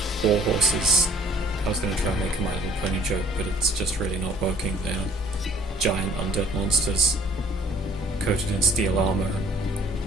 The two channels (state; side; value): normal; both; correlation 0.54